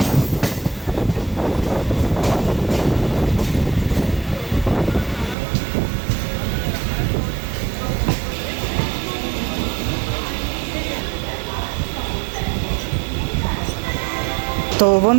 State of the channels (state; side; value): drops out; left; at 5.4 s